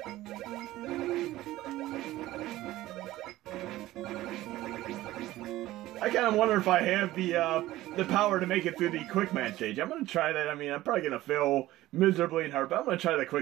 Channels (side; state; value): left; quieter; 16.2 dB